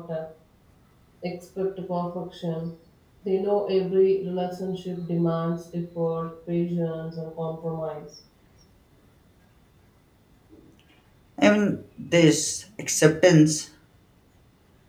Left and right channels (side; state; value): both; identical; correlation 1.00